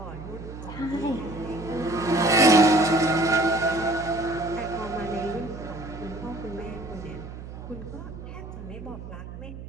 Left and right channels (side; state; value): right; noise; hum, 12 dB below the sound